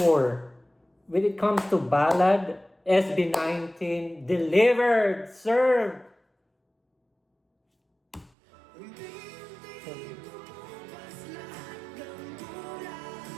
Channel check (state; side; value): drops out; left; at 8.3 s